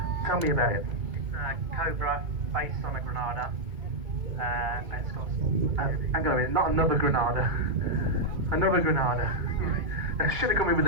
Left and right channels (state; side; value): late; left; 2.2 ms